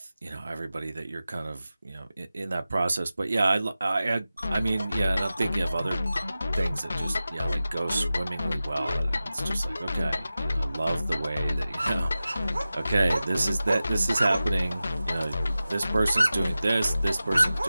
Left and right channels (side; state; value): both; inverted; correlation -0.95